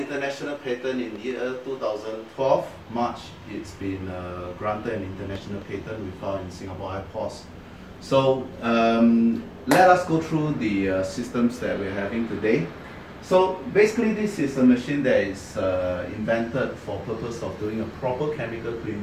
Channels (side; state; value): both; identical; correlation 1.00